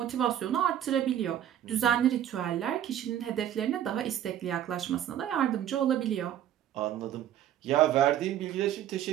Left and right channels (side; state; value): left; quieter; 11.0 dB